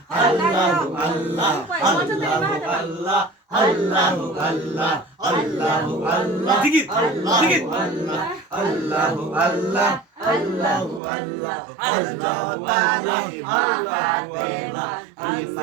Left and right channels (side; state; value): left; drops out; at 11.0 s